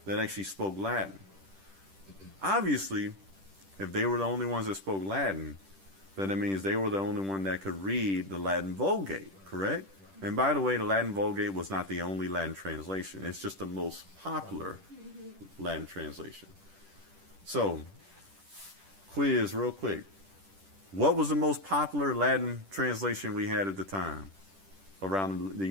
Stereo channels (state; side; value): late; left; 10 ms